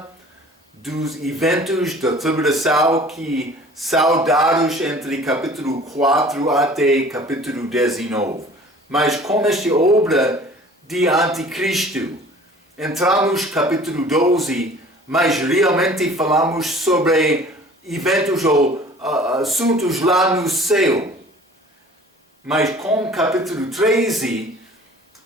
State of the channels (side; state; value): both; normal; correlation 0.48